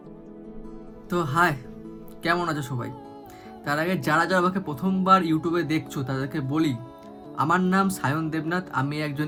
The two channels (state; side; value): identical; both; correlation 1.00